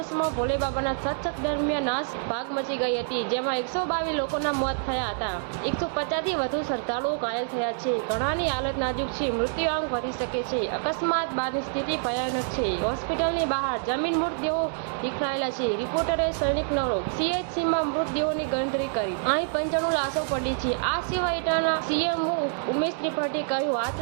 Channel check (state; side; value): silent; left; digital silence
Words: ભોલે બાબાના સત્સંગ દરમિયાન નાસભાગ મચી ગઈ હતી, જેમાં 122 લોકોના મોત થયા હતા। 150થી વધુ શ્રદ્ધાળુઓ ઘાયલ થયા છે। ઘણાની હાલત નાજુક છે, મૃત્યુઆંક વધી શકે છે। અકસ્માત બાદની સ્થિતિ ભયાનક છે। હોસ્પિટલની બહાર જમીન મૃતદેહો વિખરાયેલા છે। રિપોર્ટરે સૈનિક નરો સીએચસીમાં મૃતદેહોની ગણતરી કરી, અહીં 95 લાશો પડી છે। આ સિવાય ઇટાના સીએમઓ ઉમેશ ત્રિપાઠીએ કહ્યું,